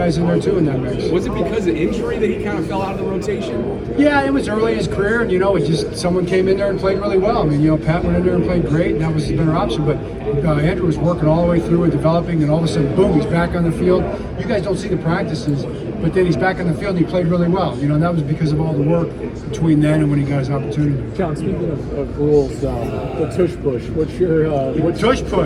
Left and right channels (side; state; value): both; identical; correlation 1.00